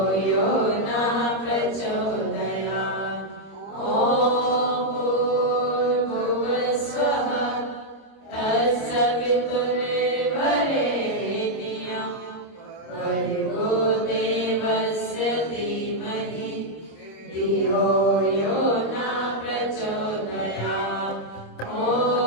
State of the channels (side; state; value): right; late; 26 ms